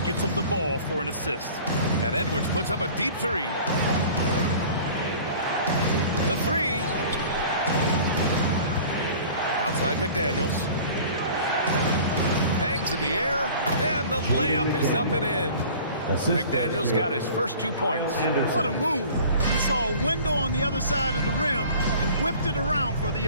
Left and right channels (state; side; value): inverted; both; correlation -0.45